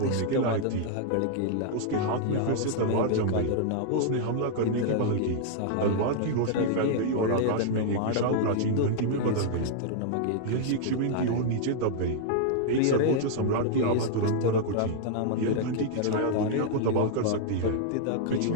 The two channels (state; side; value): different; both; correlation -0.01